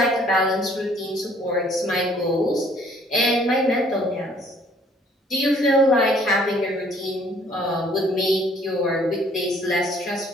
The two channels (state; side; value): normal; both; correlation 0.60